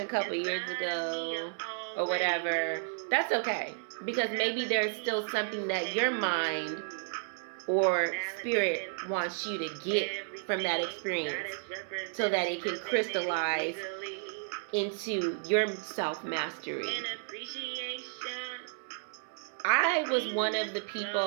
a couple years ago," or whatever, that's okay. Because maybe there's still something that your mind or spirit wants you to get from that experience so that it can crystallize into your self-mastery. I was one of the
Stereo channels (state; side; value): silent; left; 56 dB below the other